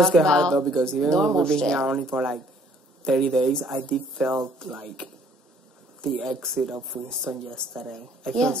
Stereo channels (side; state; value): both; normal; correlation 0.60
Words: talk get about hard though because even when normal we've been shit. here only for like 30 days, I did felt like the exit of Winston yesterday. I Yeah. feel